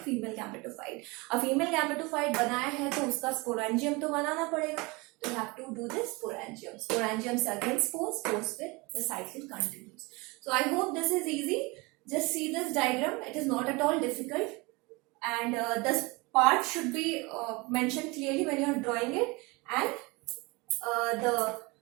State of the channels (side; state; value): left; quieter; 25.7 dB